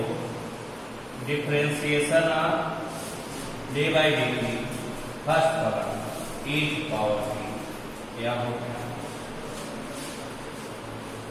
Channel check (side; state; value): both; identical; correlation 1.00